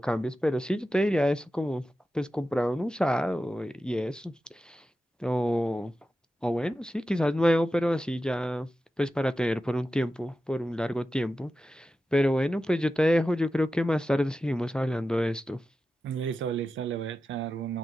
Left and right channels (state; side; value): normal; both; correlation 0.92